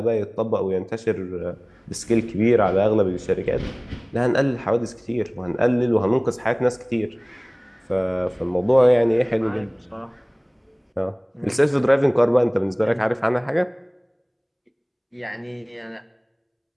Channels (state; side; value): identical; both; correlation 1.00